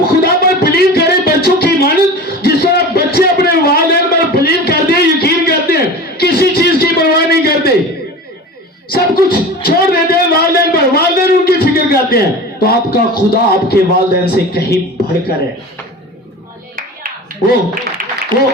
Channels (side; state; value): both; normal; correlation 0.34